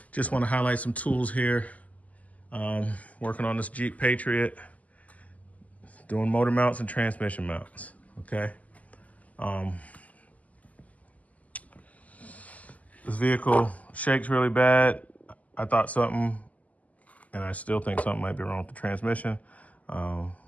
just want to highlight some tools here. Working on this Jeep Patriot, doing motor mounts and transmission mounts, okay? This vehicle shakes really bad. I thought something, and I still think something might be wrong with the transmission,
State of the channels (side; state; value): right; late; 0.073 ms